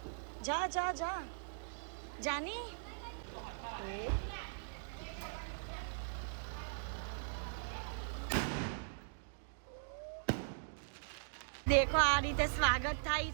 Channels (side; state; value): left; silent; digital silence